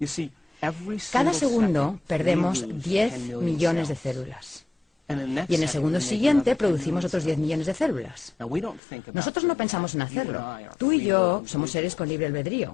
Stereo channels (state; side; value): drops out; right; at 8.8 s